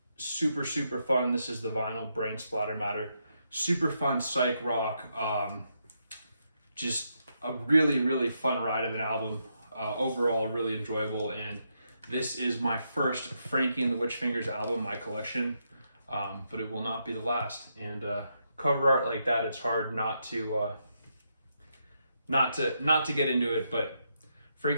super, super fun. This is the vinyl, Brain Splatter Matter. Super fun psych rock. Just a really, really fun ride of an album. Overall, really enjoyable. And this is my first Frankie and the Witchfingers album in my collection. But it will not be the last. And cover art like that, it's hard not to get into it. But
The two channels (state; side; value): inverted; both; correlation -0.81